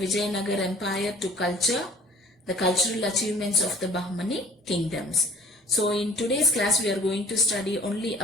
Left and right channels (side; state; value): both; normal; correlation 0.50